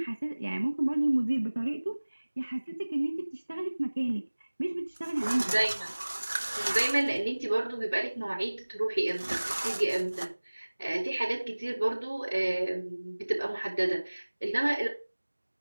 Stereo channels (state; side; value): inverted; both; correlation -1.00